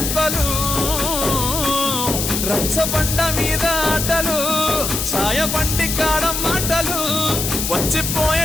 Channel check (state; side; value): noise; left; hiss, 2 dB below the sound